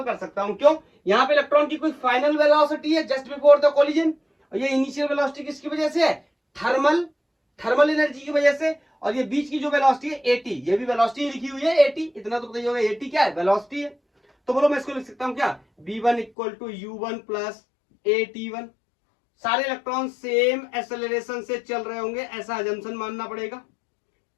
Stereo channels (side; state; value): right; drops out; at 16.3 s